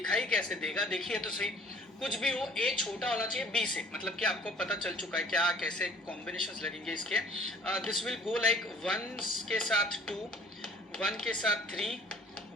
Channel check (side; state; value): both; normal; correlation 0.53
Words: कैसे देगा? देखिए तो सही, कुछ भी हो ए छोटा होना चाहिए बी से, मतलब कि आपको पता चल चुका है क्या कैसे कॉम्बिनेशंस लगेंगे इसके। दिस विल गो लाइक 1 के साथ 2, 1 के साथ 3,